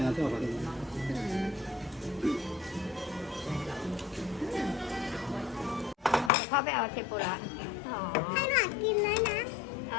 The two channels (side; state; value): right; drops out; at 6.3 s